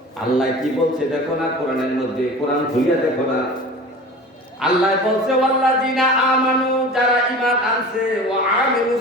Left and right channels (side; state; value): both; normal; correlation 0.37